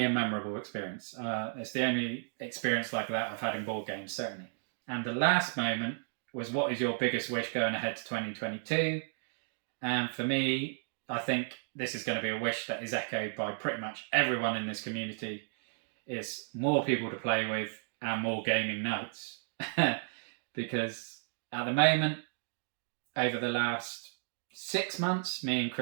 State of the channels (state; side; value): silent; left; digital silence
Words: a memorable experience. It's the only experience like that I've had in board games, certainly. And the last moment was, what is your biggest wish going ahead to 2022? And for me, I think this is going to be a wish that is echoed by pretty much everyone in this community, is more people to play with and more gaming nights. Because at the moment, over the last 6 months, me and